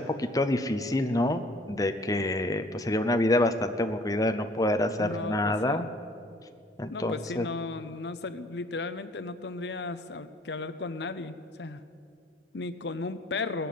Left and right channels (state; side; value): normal; both; correlation 0.56